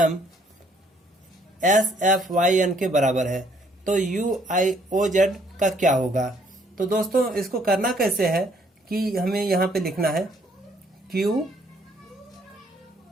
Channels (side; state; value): both; normal; correlation 0.65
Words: S F Y N के बराबर है, तो यू आई ओ जेड का क्या होगा। तो दोस्तों, इसको करना कैसे है कि हमें यहाँ पे लिखना है क्यू